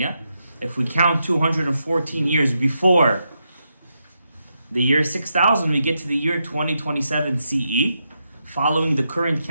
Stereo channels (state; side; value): inverted; both; correlation -0.84